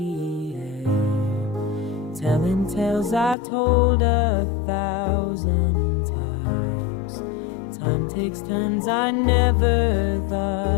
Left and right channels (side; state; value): right; drops out; at 3.4 s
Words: air, telling tales I've told 1,000 times. Time takes turns I never